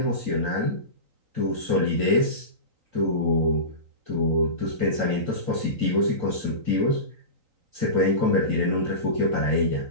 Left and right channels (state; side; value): late; left; 3.9 ms